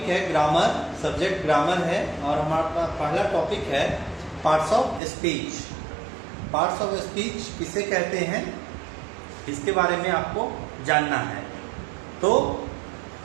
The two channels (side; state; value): left; drops out; at 5.0 s